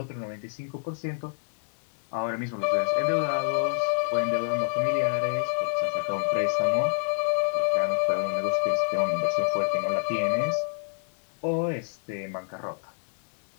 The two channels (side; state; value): right; silent; digital silence